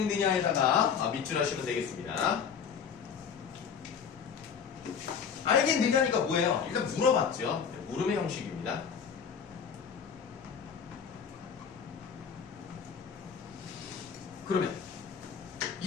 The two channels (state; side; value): quieter; right; 7.0 dB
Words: 밑줄 하시면 되겠습니다. 알겠느냐니까 뭐예요? 일단 물어봤죠. 물음의 형식입니다. 그러면